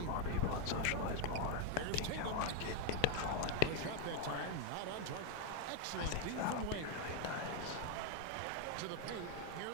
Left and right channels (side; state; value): both; different; correlation 0.01